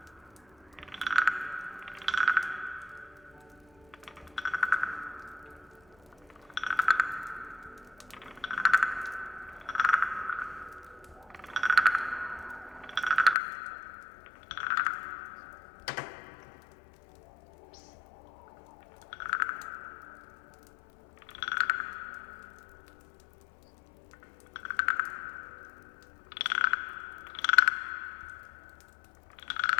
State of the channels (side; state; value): right; drops out; at 13.4 s